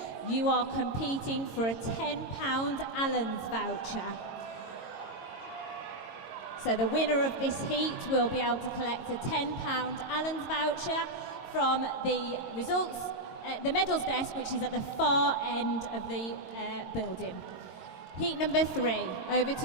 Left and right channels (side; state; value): right; late; 22 ms